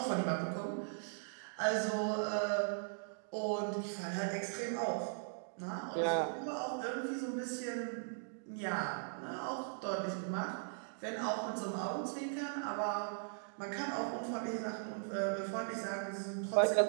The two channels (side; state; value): left; silent; digital silence